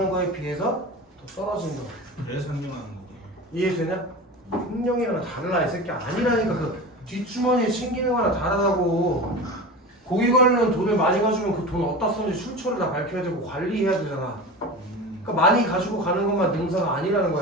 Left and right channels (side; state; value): both; normal; correlation 0.30